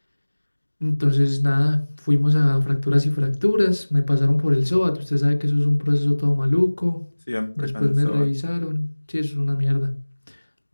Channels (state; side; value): inverted; both; correlation -1.00